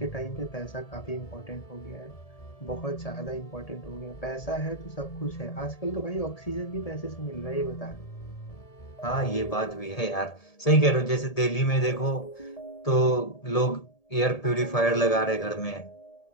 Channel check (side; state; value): right; late; 1.7 ms